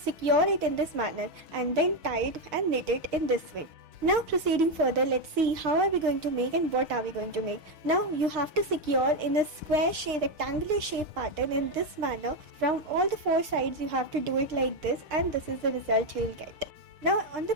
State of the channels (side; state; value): left; late; 6.6 ms